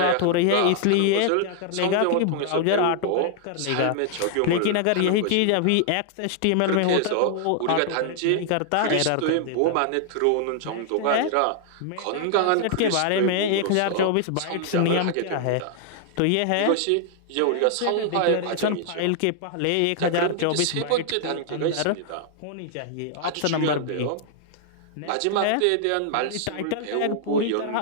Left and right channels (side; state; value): both; different; correlation 0.00